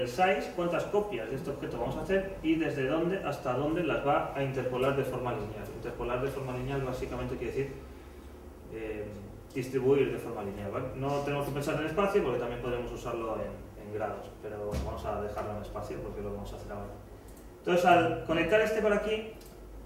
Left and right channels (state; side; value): identical; both; correlation 1.00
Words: size, cuántas copias de este objeto vamos a hacer y desde dónde hasta dónde las va a interpolar de forma lineal. Interpolar de forma lineal básicamente quiere decir distribuir de forma lineal, ¿vale? No tenemos que pensar en espacio porque también podemos usarlo en grados, pero bueno, vamos a dejarlo en espacio porque lo vamos a hacer ahora. Entonces al conectar este por aquí,